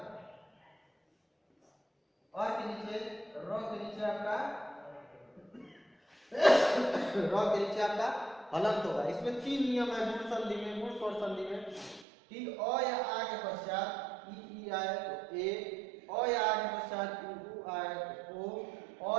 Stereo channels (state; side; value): drops out; left; at 12.1 s